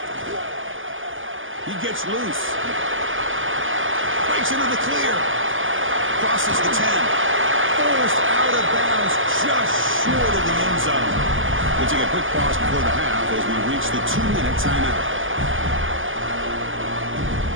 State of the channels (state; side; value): late; left; 0.58 ms